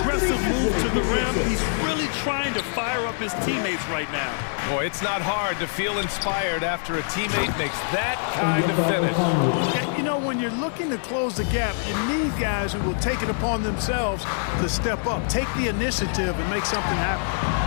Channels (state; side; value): silent; right; 62 dB below the other